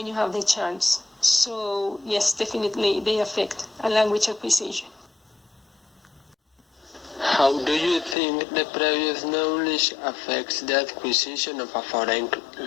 you have the chance. So yes, definitely they affect a language acquisition. How do you think the previous knowledge affects the acquisition of a foreign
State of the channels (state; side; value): drops out; right; at 8.2 s